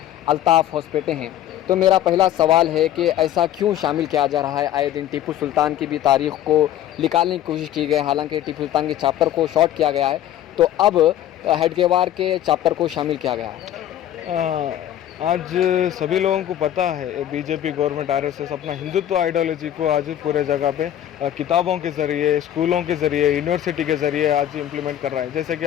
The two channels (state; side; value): quieter; right; 11.7 dB